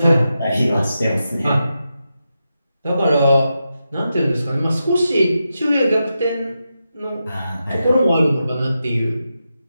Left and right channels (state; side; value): inverted; both; correlation -0.88